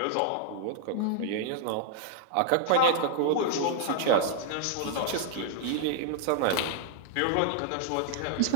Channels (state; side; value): different; both; correlation 0.00